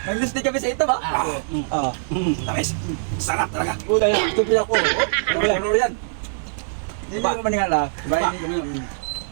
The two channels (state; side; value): silent; left; digital silence